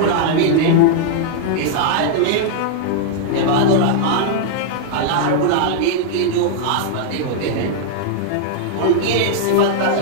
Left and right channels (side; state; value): both; different; correlation -0.01